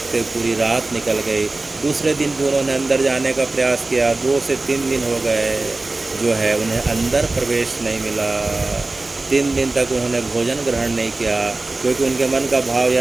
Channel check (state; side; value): quieter; left; 3.2 dB